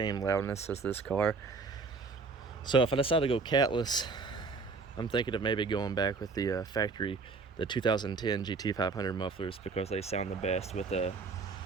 loudness as this car. So if I decide to go catless, I'm thinking of maybe going back with the factory, the 2010 GT500 mufflers, because they sound the best with the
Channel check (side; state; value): left; quieter; 4.4 dB